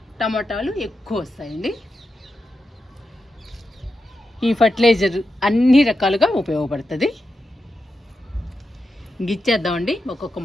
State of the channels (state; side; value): normal; both; correlation 0.88